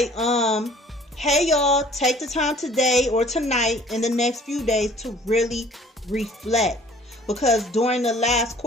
hey y'all, take the time today or tonight in the next few days to really reflect. Because during the last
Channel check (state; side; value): normal; both; correlation 0.53